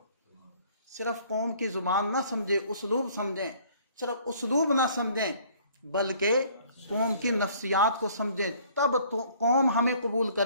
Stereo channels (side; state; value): both; inverted; correlation -0.56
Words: صرف قوم کی زبان نہ سمجھے، اسلوب سمجھیں، صرف اسلوب نہ سمجھیں بلکہ قوم کی نفسیات کو سمجھیں، تب تو قوم ہمیں قبول